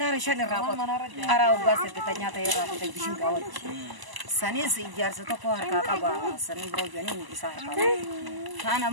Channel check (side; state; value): left; late; 1.0 ms